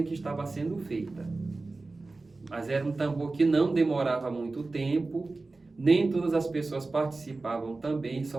que estava sendo feita. Mas era um tambor que não demorava muito tempo, nem todas as pessoas participavam também,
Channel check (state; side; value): quieter; left; 3.5 dB